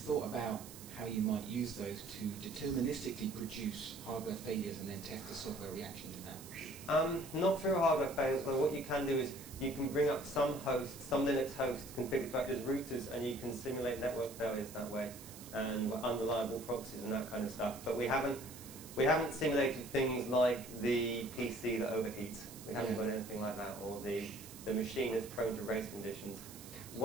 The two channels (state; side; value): noise; right; hiss, 15 dB below the sound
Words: about how you might use those to deterministically produce hardware failures and then test the software reaction to that? Not through hardware failures, but what you can do is you can bring up some hosts, some Linux hosts configured to act as routers, and you can simulate network failures that way, and unreliable proxies and that kind of stuff. But we haven't simulated things like the PC that overheats. We haven't got anything like that, or the machine that's prone to race conditions.